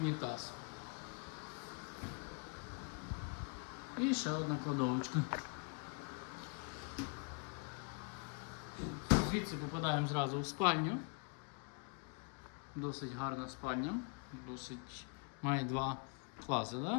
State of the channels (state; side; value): quieter; right; 34.8 dB